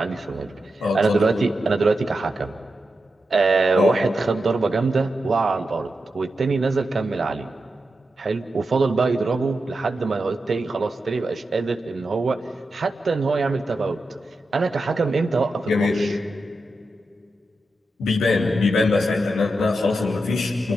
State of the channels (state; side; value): normal; both; correlation 0.89